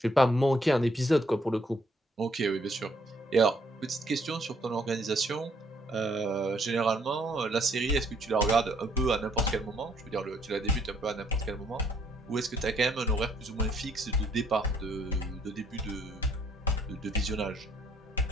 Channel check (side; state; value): both; normal; correlation 0.67